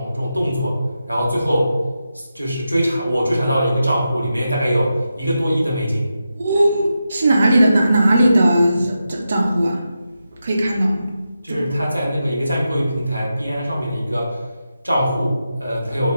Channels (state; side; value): inverted; both; correlation -0.89